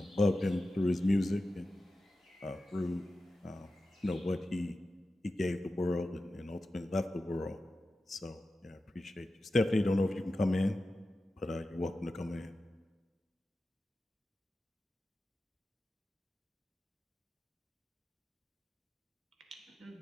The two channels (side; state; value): both; normal; correlation 0.93